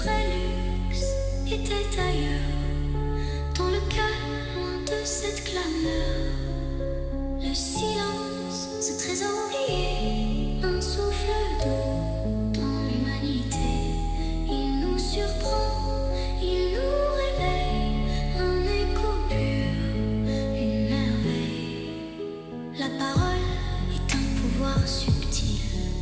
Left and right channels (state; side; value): identical; both; correlation 1.00